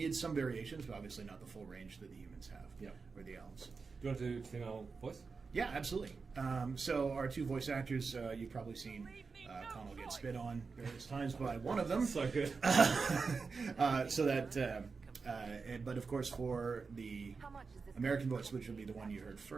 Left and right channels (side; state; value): left; quieter; 4.7 dB